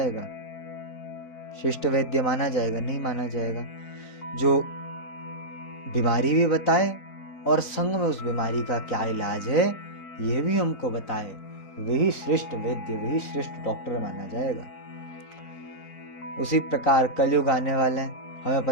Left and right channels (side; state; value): right; late; 3.9 ms